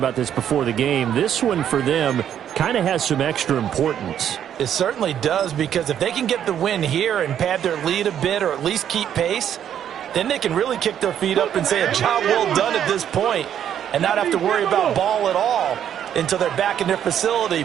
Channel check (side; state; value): left; quieter; 9.7 dB